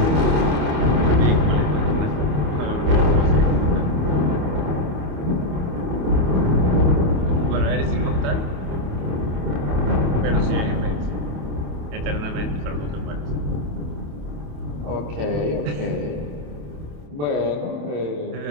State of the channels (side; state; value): left; late; 27 ms